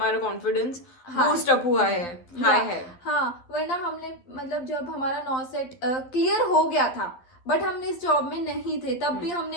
कॉन्फिडेंस बूस्ट अप हुआ है, हाई है. हाँ, वरना हमने मतलब जब हमारा 9 सेट क्लियर हो गया था बट हम इस जॉब में नहीं थे, तब भी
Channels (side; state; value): right; late; 12 ms